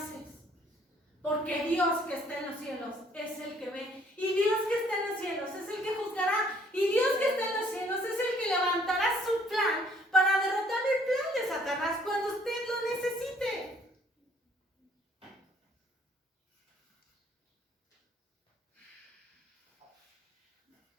Porque Dios que está en los cielos es el que ve. Y Dios que está en los cielos es el que juzgará. Y Dios que está en los cielos es el que levantará su plan para derrotar el plan de Satanás cuando usted lo necesite.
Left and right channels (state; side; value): normal; both; correlation 0.61